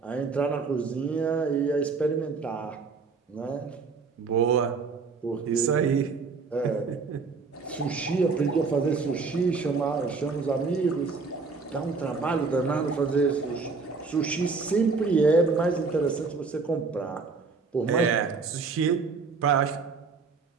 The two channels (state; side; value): quieter; left; 4.6 dB